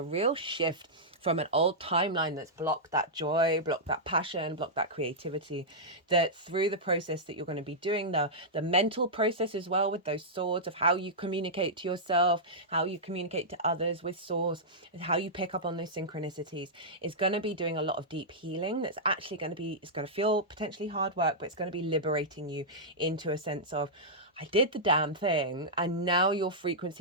real shift from an old timeline that's blocked that joy, blocked that passion, blocked that creativity, that through the process that you're going to be doing, the mental process as well with those swords of how you communicate to yourself, how you communicate to others with swords, how you pick up on those synchronicities, is going to be doing a lot of deep healing. That's actually going to be, it's going to feel potentially hard work, but it's going to be liberating you into a sense of, I did the damn thing, and now your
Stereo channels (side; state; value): both; normal; correlation -0.11